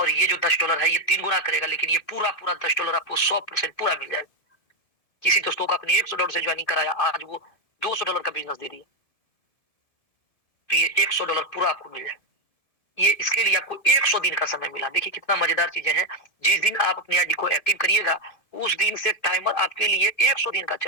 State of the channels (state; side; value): late; right; 1.7 ms